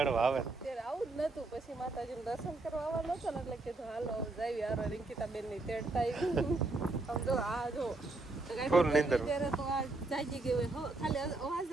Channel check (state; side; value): quieter; left; 3.2 dB